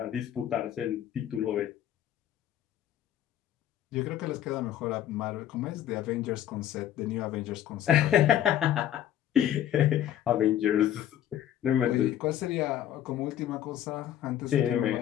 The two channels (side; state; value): right; quieter; 11.3 dB